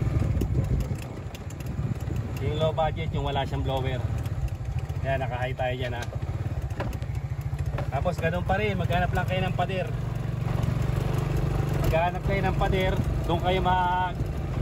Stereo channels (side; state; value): both; identical; correlation 1.00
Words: Yung low budget, yung wala siyang blower. Yan, naka-high tayo dyan ha. Tapos ganun pa rin, maghanap lang kayo ng pader. Maghanap kayo ng pader, doon kayo